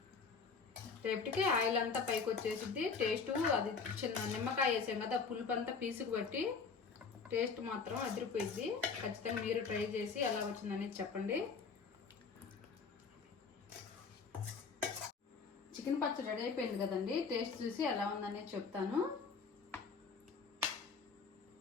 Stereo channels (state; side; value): quieter; right; 5.2 dB